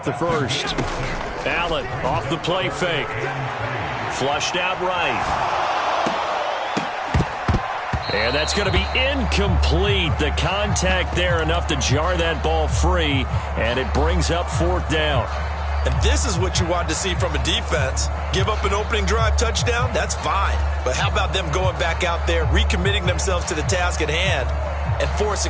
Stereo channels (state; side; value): identical; both; correlation 1.00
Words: the first. Allen off the play fake. Flushed out right. And that's going to be incomplete. The contact there enough to jar that ball free. And it brings up 4th down. And this is what you want to see from a defense. Give up an opening drive touchdown, that's fine. But how about them going back out there, recommitting themselves to the task at hand, and